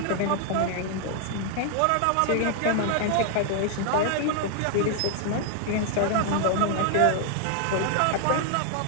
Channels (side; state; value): both; different; correlation 0.00